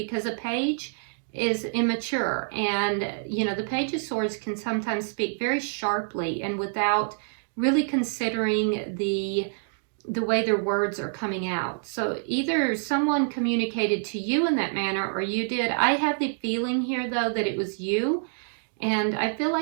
a page is immature. And, you know, the Page of Swords can sometimes speak very sharply and without really considering the way their words are coming out. So either someone communicated to you in that manner, or you did. I have the feeling here, though, that it was you. And I feel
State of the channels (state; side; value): silent; left; digital silence